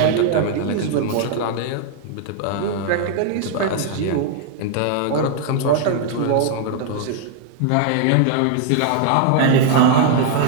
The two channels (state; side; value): different; both; correlation 0.00